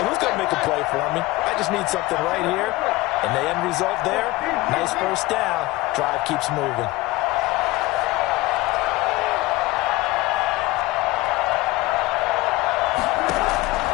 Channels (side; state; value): right; quieter; 19.9 dB